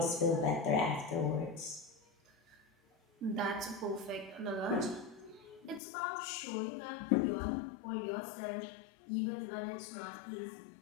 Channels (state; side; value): drops out; right; at 5.8 s